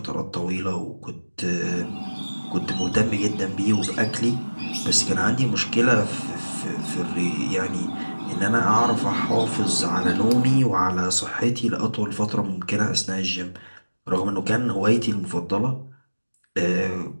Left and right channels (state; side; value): inverted; both; correlation -1.00